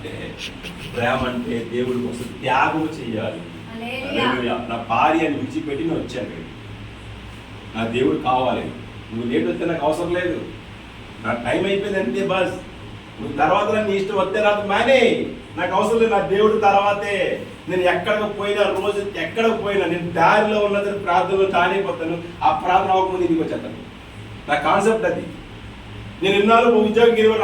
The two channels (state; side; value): identical; both; correlation 1.00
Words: ప్రేమ అంటే దేవుడి కోసం త్యాగం చేయాలి. నా భార్యని విడిచిపెట్టి నేను వచ్చాను, నా దేవుడు కావాలి. నువ్వు లేట్ వస్తే నాకు అవసరం లేదు, నా టైం అయిపోయింది అంతే బస్. నువ్వు తర్వాత నీ ఇష్టం వస్తే రాదు మానే, నాకు అవసరం లేదు. నా దేవుడు తర్వాతే. నేను ఎక్కడికి పోయినా, రోజు ఎక్కడికి పోయినా నేను దారిలో ఉన్నదని ప్రార్థనలో తానైపోతాను. ఆ ప్రార్థన అవ్వకముందు ఇంటికి వచ్చేస్తాను. నా కాన్సెప్ట్ అది. నేను ఇన్నాళ్ళు ఉద్యోగం 20